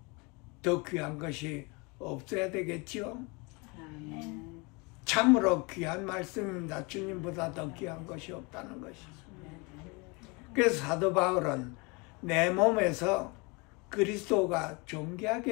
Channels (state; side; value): quieter; right; 28.7 dB